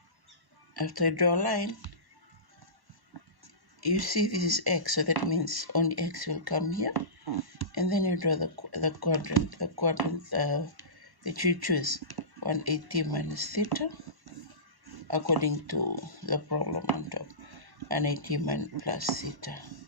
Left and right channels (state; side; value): late; left; 1.1 ms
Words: After you draw a line, you see this is X, so that means only X will come here. And then you draw the quadrant that you choose, 180 minus theta, according to the problem on top, 180 minus plus theta.